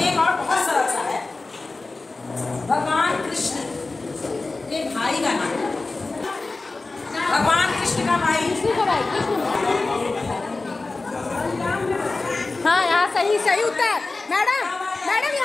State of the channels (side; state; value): right; quieter; 3.5 dB